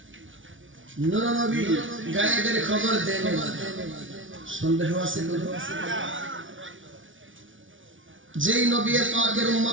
নূর নবী, গায়েবের খবর দেন। সন্দেহ আছে? যেই নবী পাকের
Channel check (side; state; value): left; late; 0.56 ms